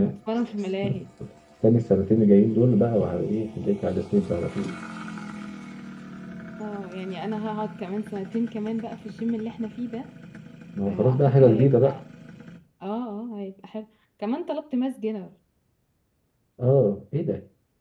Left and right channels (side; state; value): both; identical; correlation 1.00